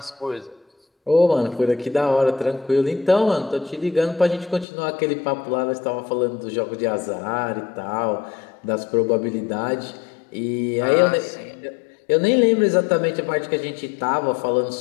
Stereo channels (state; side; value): drops out; right; at 4.7 s